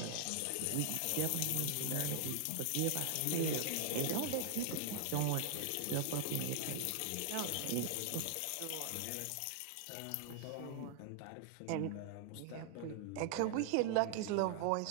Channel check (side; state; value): both; different; correlation 0.00